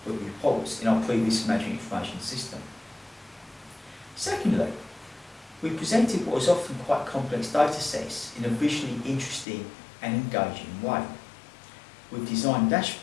reports in our previous management information system. Secondly, we presented what was often quite complex data sets in a visually interesting and engaging way. We've designed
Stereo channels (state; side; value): drops out; right; at 9.5 s